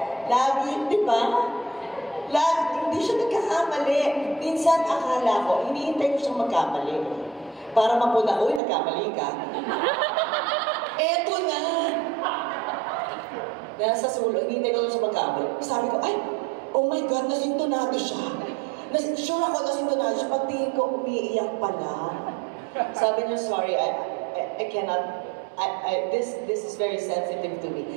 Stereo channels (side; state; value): left; drops out; at 8.6 s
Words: Lagi, di ba? Hindi siya nagkakamali. Minsan akala ko, hinihintay ko siyang magkamali. Para mapuna, uy, nagkamali ka. Eto na! Nasa sulo, hinihintay ko siya magkamali. Sabi ko, ay, oh my God, nasintonado siya. Sure ako nasintonado siya. Pagtingin ko, umiiyak pala. Sabi niya, sorry, I cannot. This is very sensitive to